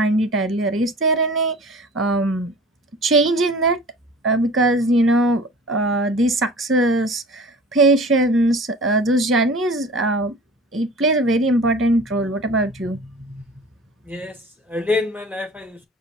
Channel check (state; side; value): normal; both; correlation 0.41